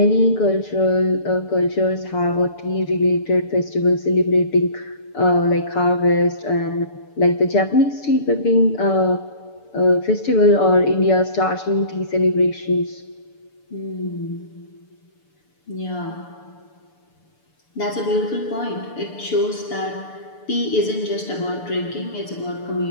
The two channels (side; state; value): right; late; 6.9 ms